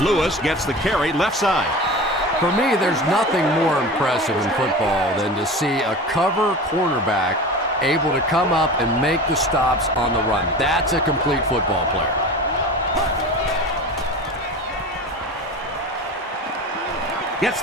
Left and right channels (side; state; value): both; normal; correlation 0.33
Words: Lewis gets the carry left side. For me, there's nothing more impressive in football than to see a cover cornerback able to come up and make the stops on the run. That's a complete football player. Gets